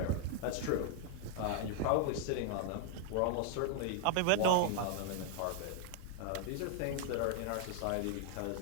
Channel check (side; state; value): both; different; correlation 0.00